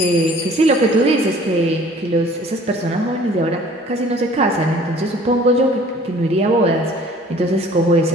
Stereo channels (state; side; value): normal; both; correlation 0.52